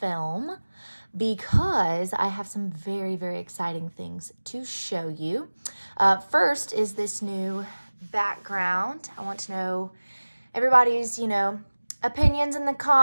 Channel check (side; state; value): both; inverted; correlation -1.00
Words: because I have some very, very exciting things to show you. First is this new background. I want to know everybody's, opinions in the